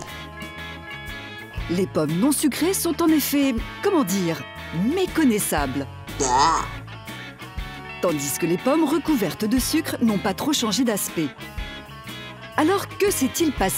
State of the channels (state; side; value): identical; both; correlation 1.00